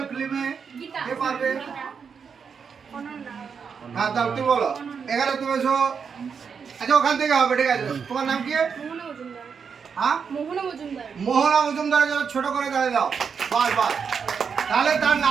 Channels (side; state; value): left; quieter; 6.3 dB